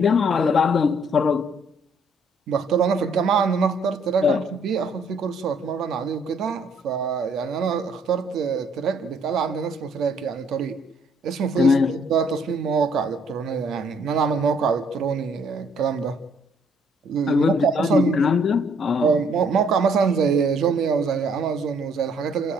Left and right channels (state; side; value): normal; both; correlation 0.65